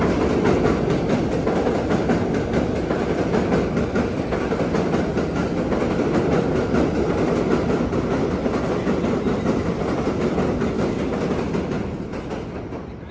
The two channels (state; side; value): identical; both; correlation 1.00